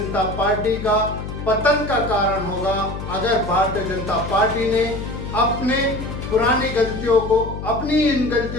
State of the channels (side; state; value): left; noise; hum, 8 dB below the sound